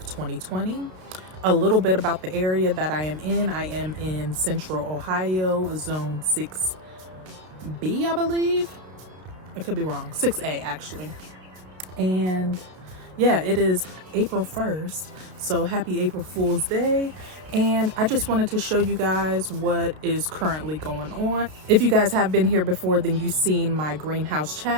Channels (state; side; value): late; left; 32 ms